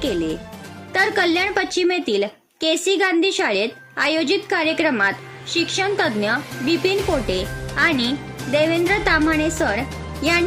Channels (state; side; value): identical; both; correlation 1.00